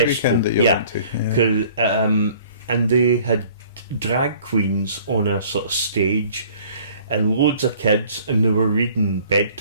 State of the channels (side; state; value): both; inverted; correlation -0.53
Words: festival. weekend that you went to? Cause, and they had drag queens on a sort of stage and loads of kids, and they were reading